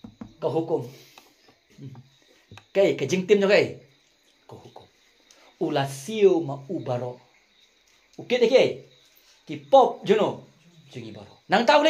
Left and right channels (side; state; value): both; identical; correlation 1.00